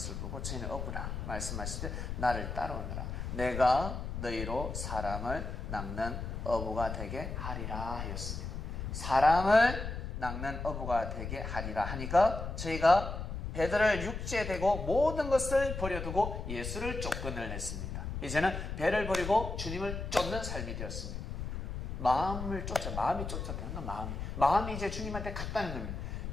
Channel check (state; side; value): noise; left; rumble, 5 dB below the sound